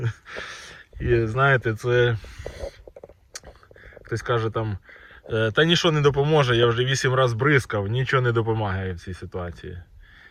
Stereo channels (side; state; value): both; identical; correlation 1.00